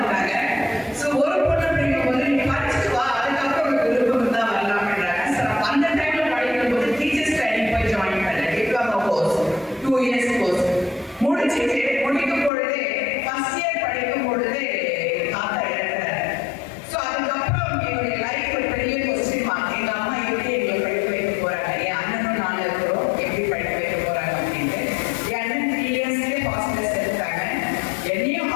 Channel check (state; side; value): drops out; right; at 12.5 s